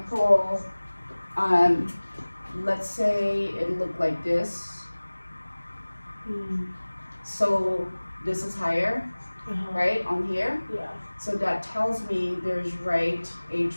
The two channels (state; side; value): inverted; both; correlation -1.00